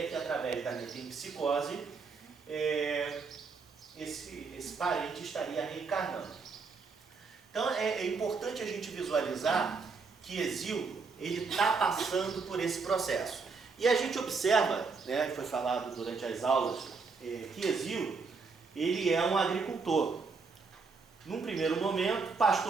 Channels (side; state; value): left; quieter; 4.7 dB